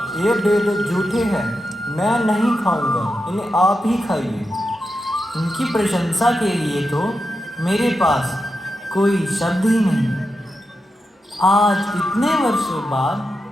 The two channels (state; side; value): normal; both; correlation 0.88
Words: ये बेर झूठे हैं, मैं नहीं खाऊंगा, इन्हें आप ही खाइए। उनकी प्रशंसा के लिए तो मेरे पास कोई शब्द ही नहीं। आज इतने वर्षों बाद